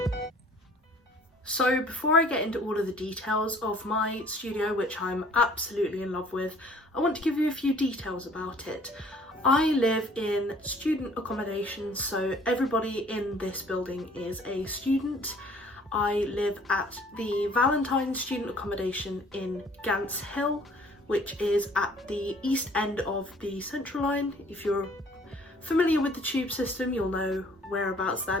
So before I get into all of the details of my studio, which I'm absolutely in love with, I want to give you a few details about it. I live in student accommodation, so everybody in this building is a student. I live at the Valentine student accommodation in Gants Hill, which is at the east end of the Central Line. If you're familiar with the tube system, you'll know whereabouts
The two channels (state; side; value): normal; both; correlation 0.55